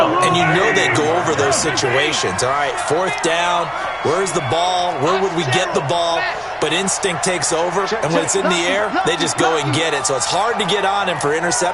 And you know they go over those situations. All right, 4th down, where's the ball? Where would we get the ball? But instinct takes over, and when it's in the air, they just go and get it. So it's hard to get on him for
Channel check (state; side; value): identical; both; correlation 1.00